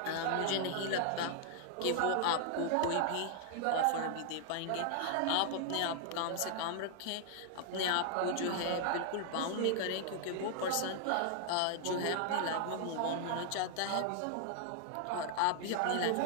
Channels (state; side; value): different; both; correlation -0.01